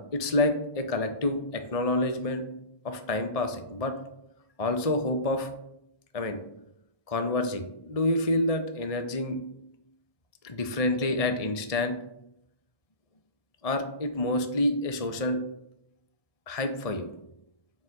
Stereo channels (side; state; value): right; late; 1.6 ms